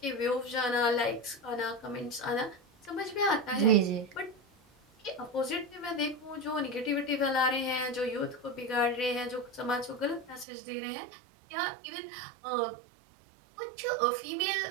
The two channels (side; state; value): left; drops out; at 10.5 s